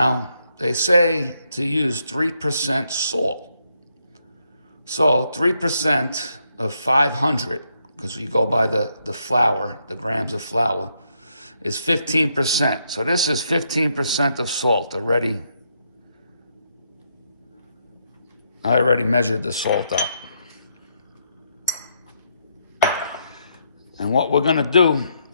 they say to use 3% salt. So 3% of 500, because you go by the flour, the grams of flour, is 15%. So this is 15% of salt already. I already measured the salt out. And what we're gonna do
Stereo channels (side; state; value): both; inverted; correlation -0.77